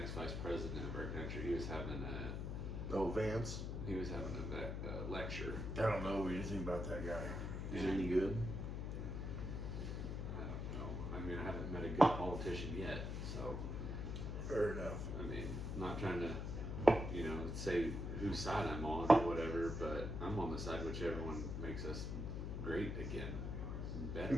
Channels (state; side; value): noise; left; hum, 3 dB below the sound